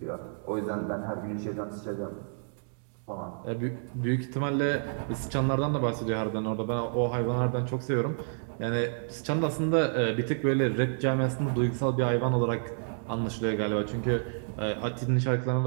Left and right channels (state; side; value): silent; left; digital silence